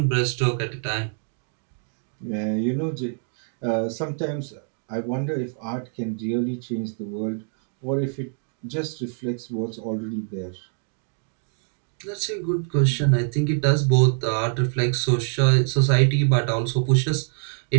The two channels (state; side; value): silent; left; 58 dB below the other